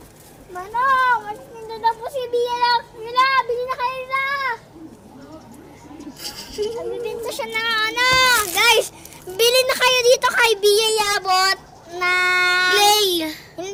Manong, mas nindo na po si Bia lang. Mila, bili na kayo na. Nagbibinta siya na ano. Guys, bili na kayo dito kay Bia Yabot na... Play.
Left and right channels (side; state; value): both; identical; correlation 1.00